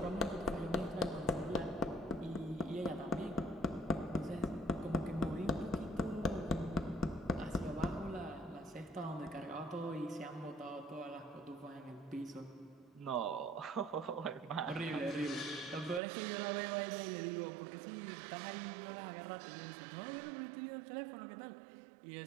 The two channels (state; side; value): drops out; left; at 16.0 s